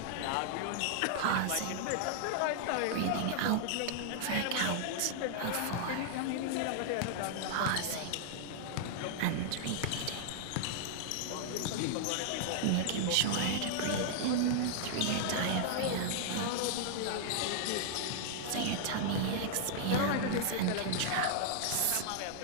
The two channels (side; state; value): both; different; correlation -0.01